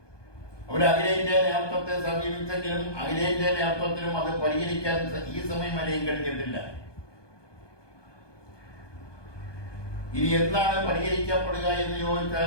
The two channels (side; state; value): right; late; 1.2 ms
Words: അവർ അഖിലേന്ത്യാ നേതൃത്വത്തെ സമീപിച്ചെങ്കിലും അഖിലേന്ത്യാ നേതൃത്വത്തിനും അത് പരിഹരിക്കാൻ ഈ സമയം വരെയും കഴിഞ്ഞിട്ടില്ല. ഇനി എന്നാണ് പരിഹരിക്കപ്പെടുക എന്ന്